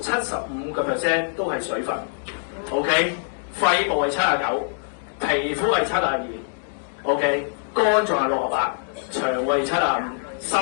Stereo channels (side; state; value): right; silent; digital silence